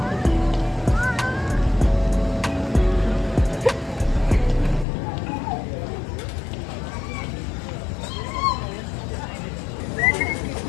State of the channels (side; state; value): right; drops out; at 4.9 s